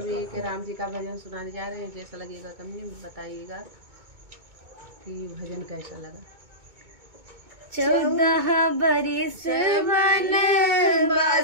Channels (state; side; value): late; left; 2.2 ms